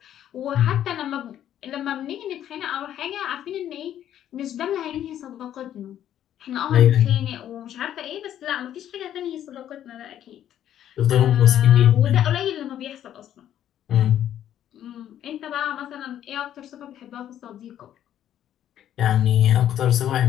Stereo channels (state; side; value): quieter; right; 11.0 dB